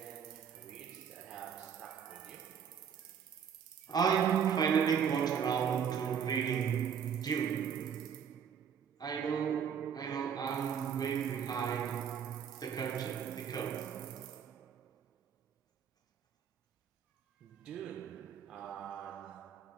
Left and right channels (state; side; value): quieter; left; 7.6 dB